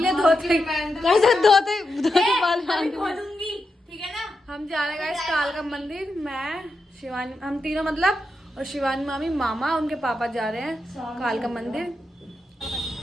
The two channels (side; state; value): both; normal; correlation 0.87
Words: ले धोते बाल खोलूंगी, ठीक है ना। हम जा रहे हैं कालका मंदिर, मैं शिवानी, हम तीनों मतलब, और शिवानी मामी, मामा, उनके पापा जा रहे हैं कालका मंदिर।